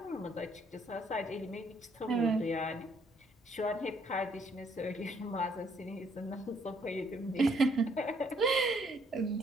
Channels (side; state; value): both; normal; correlation 0.68